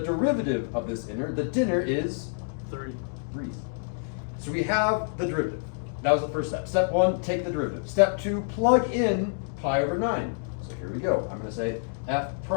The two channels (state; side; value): silent; right; digital silence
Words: of this inner, the dinner, is 3. 3. So we have the derivative. That was the first step. Step 1, take the derivative. Step 2, plug in pi over 9. So here we go. I'm going to say f